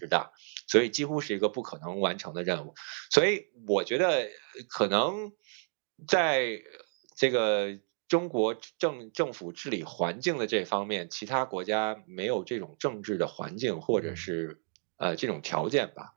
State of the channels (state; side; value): silent; left; 57 dB below the other